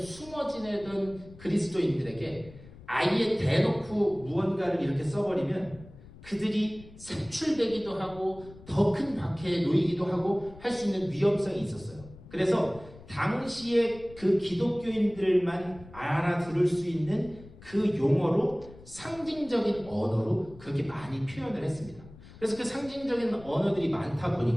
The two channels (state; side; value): noise; left; rumble, 19 dB below the sound